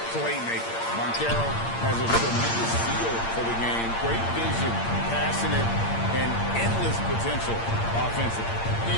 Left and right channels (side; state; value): right; late; 8.7 ms